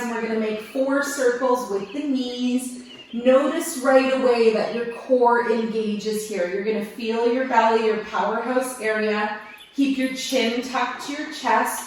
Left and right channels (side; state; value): both; identical; correlation 1.00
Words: and we're going to make 4 circles with the knees. Notice right away that your core engages here. You're going to feel your belly, your powerhouse area. Keep your chin tucked to your